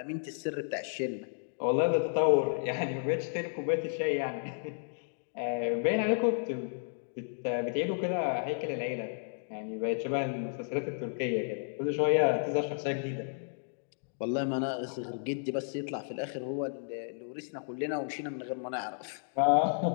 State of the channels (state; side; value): silent; right; digital silence